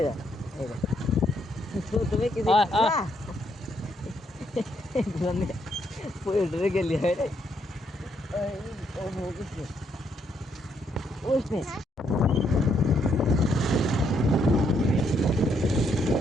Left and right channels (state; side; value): normal; both; correlation 0.73